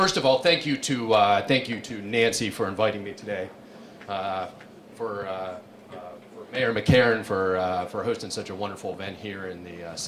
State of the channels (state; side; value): identical; both; correlation 1.00